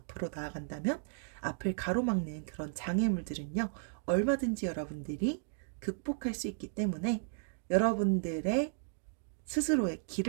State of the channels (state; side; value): silent; left; digital silence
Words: 나아간다면 앞을 가로막는 그런 장애물들은요, 얼마든지 여러분들이 극복할 수 있기 때문에 여러분들의 스스로의